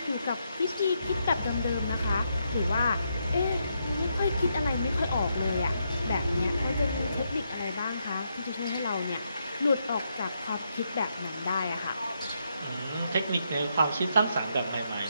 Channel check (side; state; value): both; inverted; correlation -0.79